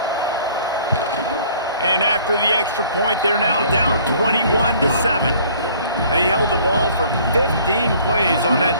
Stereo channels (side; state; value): both; inverted; correlation -0.55